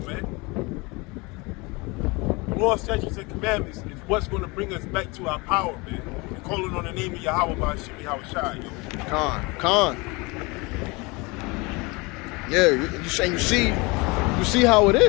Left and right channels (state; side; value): quieter; right; 26.1 dB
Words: man. The law, statutes, and commandments is what's going to bring us back to our power, man. And calling on the name of Yahawah by Shemi, yo. Con. Yeah, you see how it